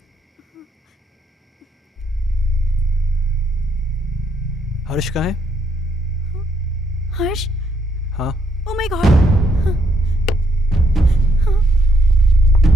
हर्ष कहाँ है? हर्ष? हाँ, ओह माय गॉड।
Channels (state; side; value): normal; both; correlation 0.75